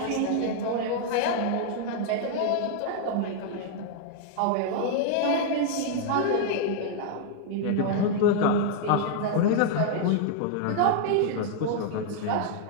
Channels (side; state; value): both; different; correlation -0.01